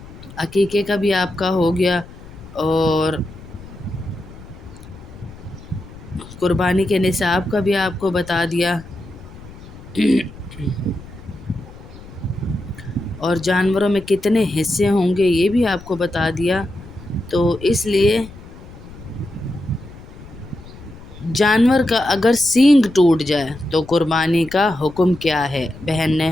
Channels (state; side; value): noise; left; rumble, 17 dB below the sound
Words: عقیقے کا بھی آپ کا ہو گیا اور قربانی کے نصاب کا بھی آپ کو بتا دیا اور جانوروں میں کتنے حصے ہوں گے یہ بھی آپ کو بتا دیا۔ تو اس لیے جانور کا اگر سینگ ٹوٹ جائے تو قربانی کا حکم کیا ہے؟ بہن نے